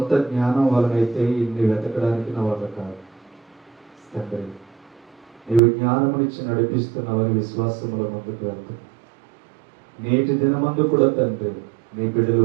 జ్ఞానం వలనైతే ఇన్ని వెతకడానికి నా వల్ల కాదు తండ్రి. నీవు జ్ఞానమునిచ్చి నడిపిస్తున్నావని విశ్వాసముల ముందుకు వెళ్తున్నా. నేటి దినమందు కూడా తండ్రి, నీ బిడ్డలు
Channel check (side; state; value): left; drops out; at 5.6 s